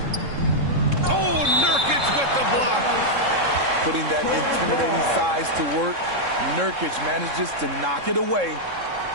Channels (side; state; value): left; late; 3.7 ms